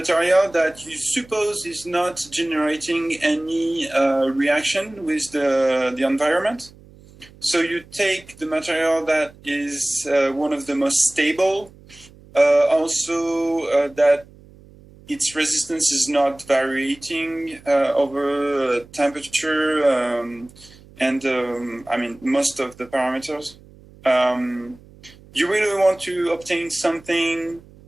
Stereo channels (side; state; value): right; noise; hum, 24 dB below the sound